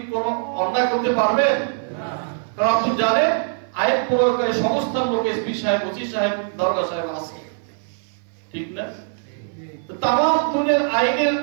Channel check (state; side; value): silent; left; 59 dB below the other